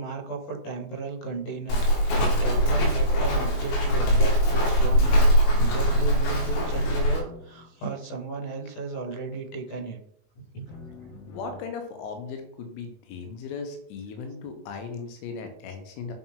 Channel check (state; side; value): late; right; 19 ms